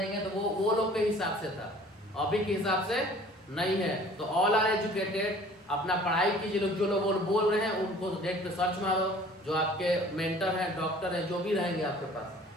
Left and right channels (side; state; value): both; normal; correlation 0.50